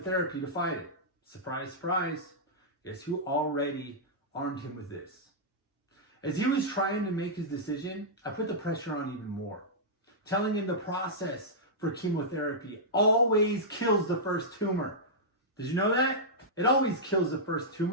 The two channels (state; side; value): normal; both; correlation -0.11